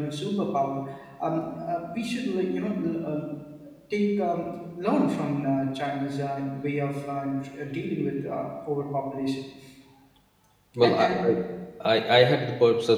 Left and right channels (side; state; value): both; identical; correlation 1.00